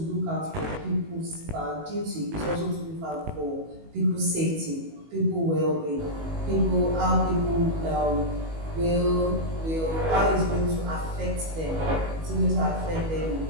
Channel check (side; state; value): left; late; 19 ms